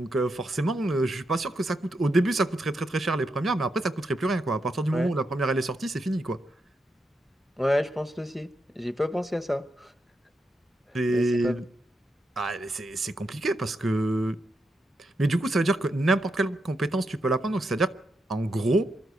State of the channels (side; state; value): both; normal; correlation 0.84